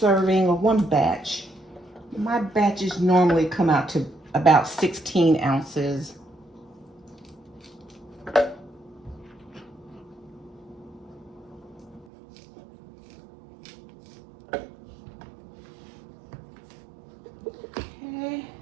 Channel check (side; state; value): left; drops out; at 12.1 s